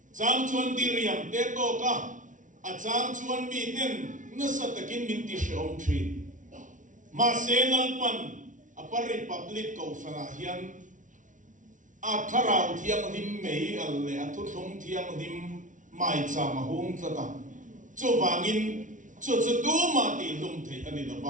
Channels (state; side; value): late; left; 0.37 ms